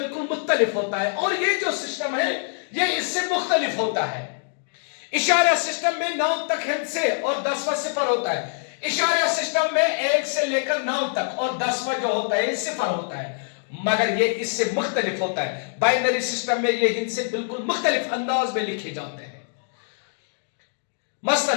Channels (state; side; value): silent; right; digital silence